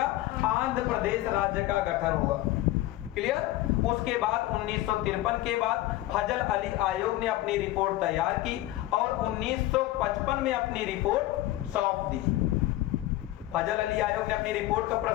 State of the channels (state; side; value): quieter; right; 16.1 dB